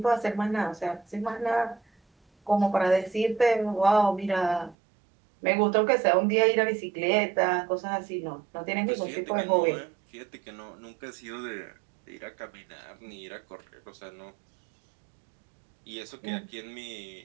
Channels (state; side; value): drops out; left; at 4.8 s